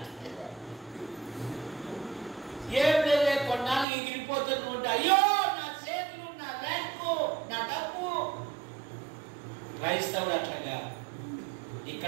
ఏం లేదే, కొన్నాళ్ళు ఎగిరిపోతుంది ఉంటే, అయ్యో నా చేతులు, నా ర్యాంకు, నా డబ్బు. క్రైస్తవుడు అట్లాగా,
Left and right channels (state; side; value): drops out; left; at 3.9 s